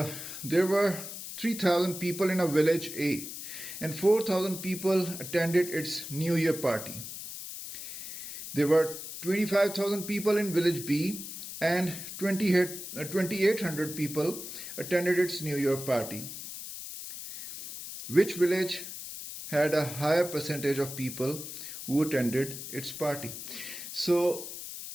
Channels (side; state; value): left; noise; hiss, 9 dB below the sound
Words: were 3,000 people in a village A, and 4,000 people attended its New Year party. There were 25,000 people in village B, and 2,800 people attended its New Year party. Which village had a higher percentage of people who attended its party? So,